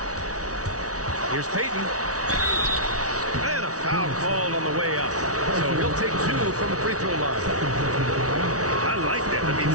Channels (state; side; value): late; left; 0.67 ms